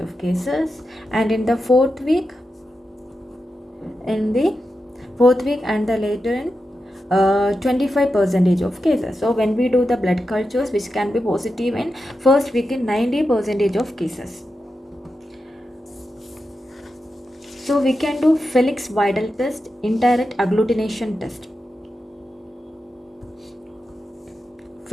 of cases, and in the fourth week and the later in 25% of cases. So when we do the blood cultures, which can be positive in first week in 90% of cases. So we can do Felix Vidal test, indirect agglutination test.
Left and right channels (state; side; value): normal; both; correlation 0.89